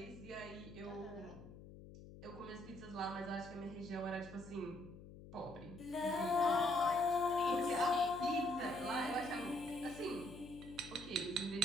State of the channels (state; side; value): noise; left; hum, 15 dB below the sound